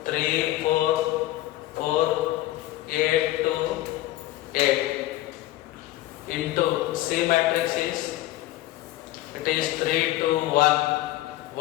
2, 3, 4, 4, 8, 2, 8. Into C matrix is, it is 3, 2, 1,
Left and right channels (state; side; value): quieter; right; 16.2 dB